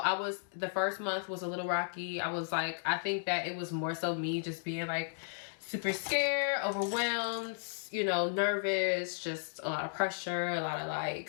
the first month was a little rocky. I was like, I think that it was more so me just being like super scared, overwhelmed, you know, nervous, just a lot of pressure, a lot of like,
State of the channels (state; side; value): silent; right; digital silence